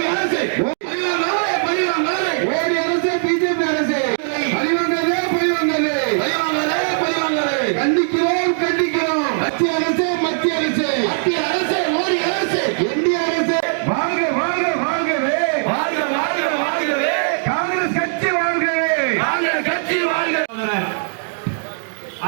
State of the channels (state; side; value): silent; left; digital silence